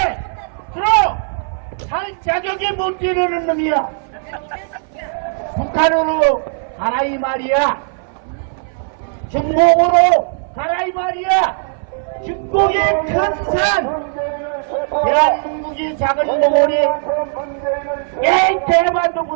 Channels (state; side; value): silent; left; 58 dB below the other